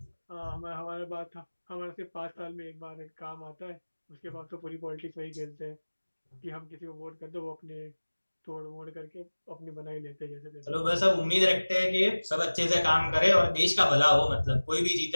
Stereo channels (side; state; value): both; inverted; correlation -1.00